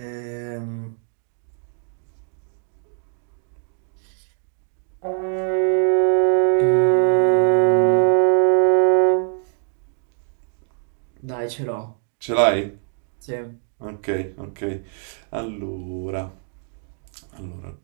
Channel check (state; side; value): silent; left; digital silence